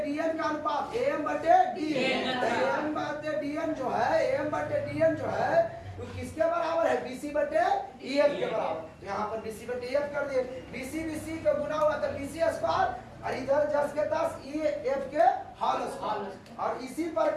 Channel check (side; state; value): both; identical; correlation 1.00